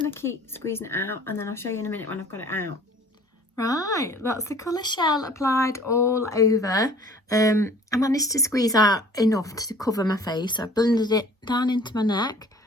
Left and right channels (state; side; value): normal; both; correlation 0.50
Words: to keep squeezing it out, and then I'll show you in a minute when I've got it out. Right, that's the colour Shell applied all over. I managed to squeeze out enough to cover my face. So I blended it down into my neck.